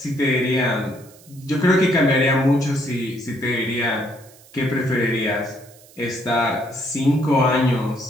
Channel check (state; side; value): noise; right; hiss, 25 dB below the sound